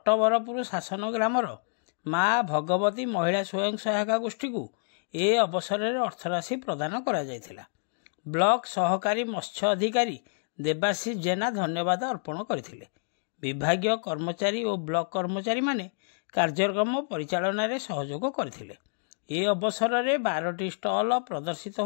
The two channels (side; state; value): right; silent; 59 dB below the other